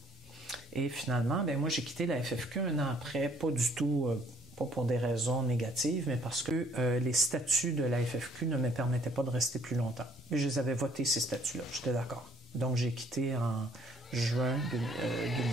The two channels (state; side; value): normal; both; correlation 0.62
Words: Et finalement, moi, j'ai quitté la FFQ 1 an après, pas du tout, pas pour des raisons négatives, mais parce que les statuts de la FFQ ne me permettaient pas de rester plus longtemps. Mais je les avais votés, ces statuts-là, j'étais d'accord. Donc, j'ai quitté en juin